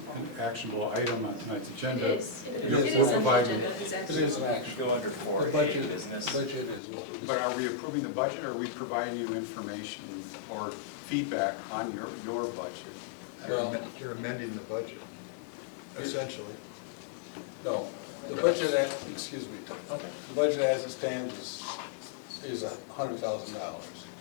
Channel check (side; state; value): right; drops out; at 6.8 s